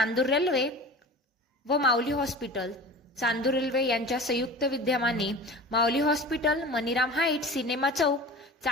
रेल्वे व माऊली हॉस्पिटल चांदूर रेल्वे यांच्या संयुक्त विद्यमाने माऊली हॉस्पिटल, मनीराम हाईट, सिनेमा चौक,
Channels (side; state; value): both; normal; correlation 0.36